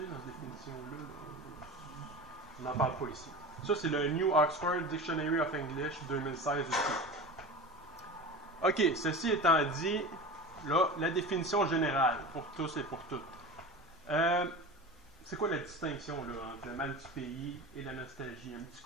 dans cette définition-là. On n'en parle pas ici. Ça, c'est le New Oxford Dictionary of English 2016 aussi. OK, ceci étant dit, là, la définition générale pour tous et pour toutes. C'est quoi la distinction là, entre le mal du pays et la nostalgie? Un petit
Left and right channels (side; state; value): both; normal; correlation 0.30